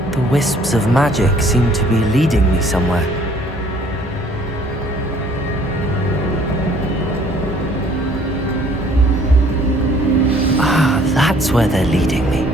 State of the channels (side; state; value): both; normal; correlation 0.58